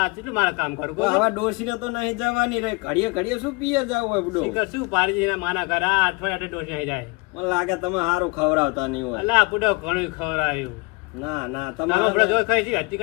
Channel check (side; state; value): right; quieter; 27.5 dB